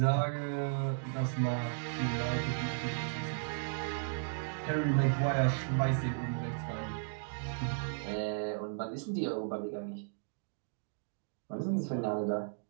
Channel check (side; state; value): left; silent; digital silence